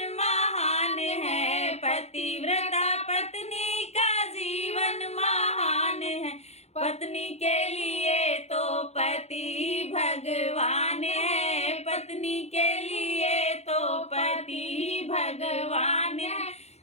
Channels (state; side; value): late; right; 0.31 ms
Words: महान है, पतिव्रता पत्नी का जीवन महान है। पत्नी के लिए तो पति भगवान है, पत्नी के लिए तो पति भगवान है।